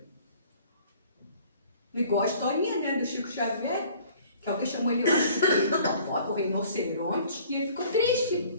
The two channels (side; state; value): both; inverted; correlation -0.53